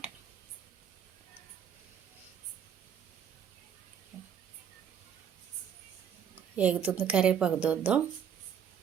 ఎగుతుంది కరివేపాకు దూద్దాం.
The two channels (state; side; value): quieter; left; 8.1 dB